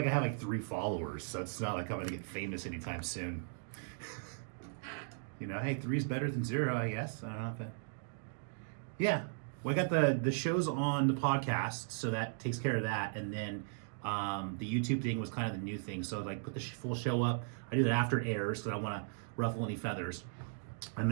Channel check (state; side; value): silent; left; digital silence